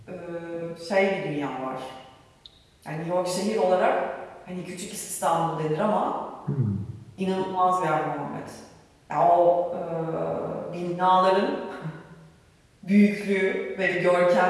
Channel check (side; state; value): both; identical; correlation 1.00